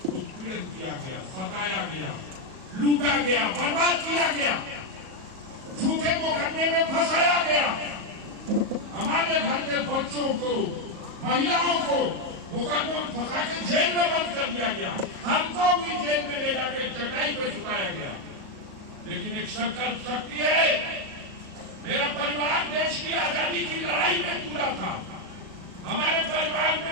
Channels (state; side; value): late; left; 37 ms